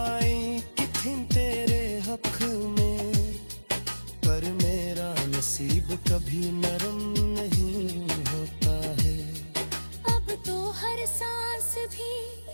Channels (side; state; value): both; inverted; correlation -1.00